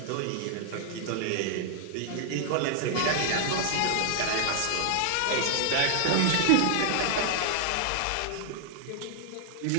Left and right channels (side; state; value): both; different; correlation 0.00